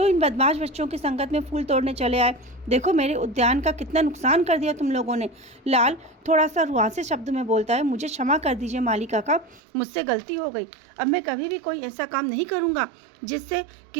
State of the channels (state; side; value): drops out; left; at 9.6 s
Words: इन बदमाश बच्चों की संगत में फूल तोड़ने चले आए? देखो मेरे उद्यान का कितना नुकसान कर दिया तुम लोगों ने। लाल थोड़ा सा रुआंसे शब्द में बोलता है, मुझे क्षमा कर दीजिए माली काका, मुझसे गलती हो गई, अब मैं कभी भी कोई ऐसा काम नहीं करूँगा जिससे